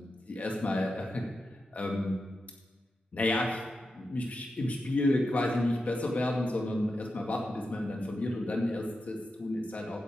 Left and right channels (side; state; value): both; normal; correlation 0.89